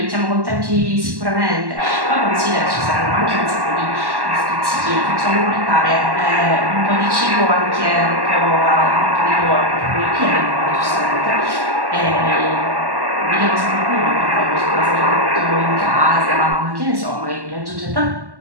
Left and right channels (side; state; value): left; late; 1.1 ms